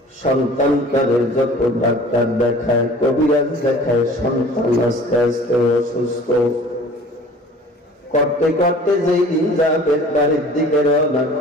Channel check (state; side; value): normal; both; correlation 0.46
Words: সন্তানটারে যত ডাক্তার দেখায়, কবিরাজ দেখায়, সন্তান আস্তে আস্তে অসুস্থ। করতে করতে যেই দিন যাবেন বাড়ির দিকে রওনা